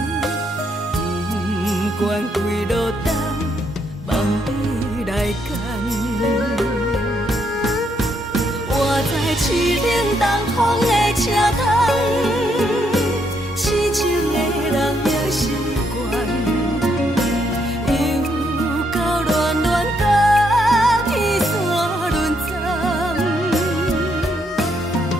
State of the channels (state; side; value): normal; both; correlation 0.75